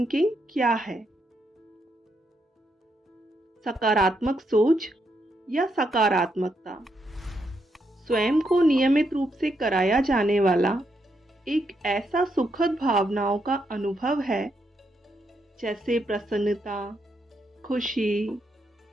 क्या है? सकारात्मक सोच या सकारात्मकता स्वयं को नियमित रूप से कराया जाने वाला एक ऐसा सुखद भावनाओं का अनुभव है, जैसे प्रसन्नता, खुशी,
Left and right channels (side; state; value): both; normal; correlation 0.79